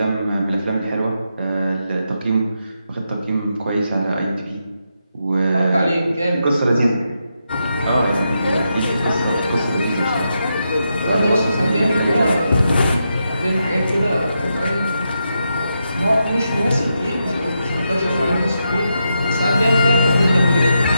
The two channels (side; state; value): both; inverted; correlation -0.84